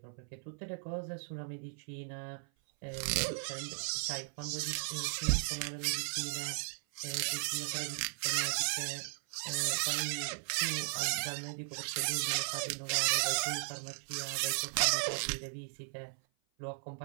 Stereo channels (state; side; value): silent; left; 53 dB below the other